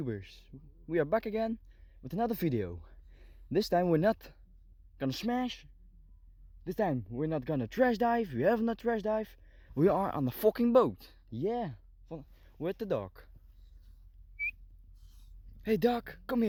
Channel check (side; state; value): both; identical; correlation 1.00